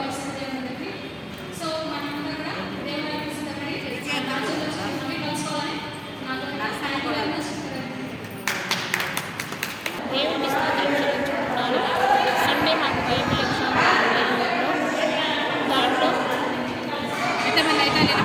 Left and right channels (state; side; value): identical; both; correlation 1.00